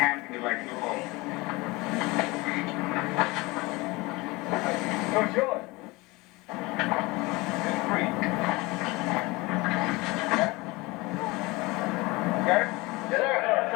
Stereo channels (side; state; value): right; quieter; 23.1 dB